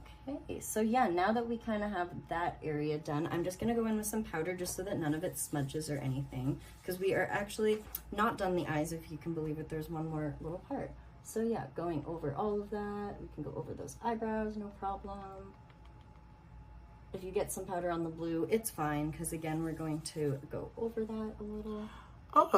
so yeah, now that we kind of have that area done, I'm just going to go in with some powder just so that none of it smudges or anything, because we are actually not done the eyes, if you can believe it. There's one more little part. So yeah, going over all of that, we can go over those eyebrows, no problem. If you get some powder on the blue, it's fine, because again, we're going to go over that a little.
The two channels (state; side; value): identical; both; correlation 1.00